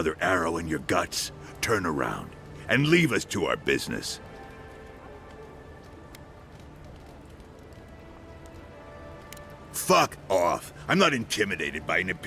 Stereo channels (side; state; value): both; identical; correlation 1.00